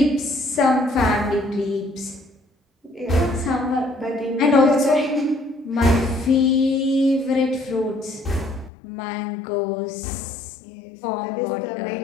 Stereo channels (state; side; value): drops out; right; at 8.7 s